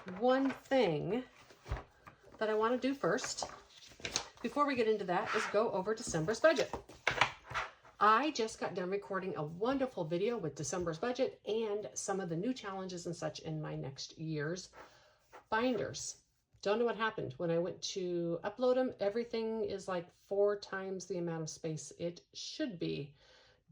one thing that I want to do first, before we get into that, is go over December's budget. I just got done recording a wonderful video with December's budget and some of the new challenges and such in my next year's binders. Don't know what happened. When I went to upload them, everything is like 4 times the amount of space it should be.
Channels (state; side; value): identical; both; correlation 1.00